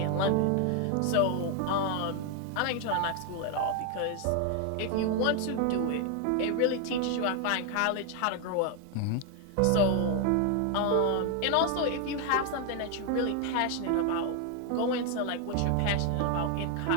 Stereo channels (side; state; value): both; different; correlation 0.01